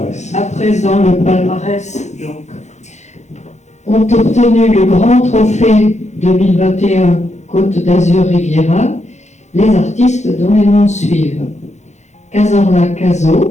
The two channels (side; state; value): right; late; 0.33 ms